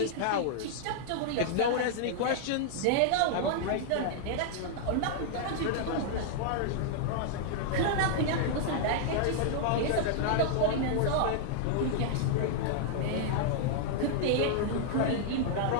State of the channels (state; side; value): different; both; correlation -0.01